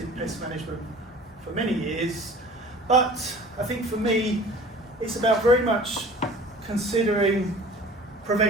pest management for many years, but I think for me, it's about very much considering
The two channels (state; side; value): normal; both; correlation 0.45